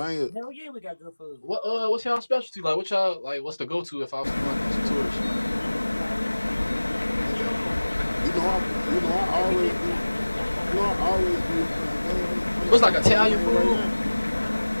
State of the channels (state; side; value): inverted; both; correlation -1.00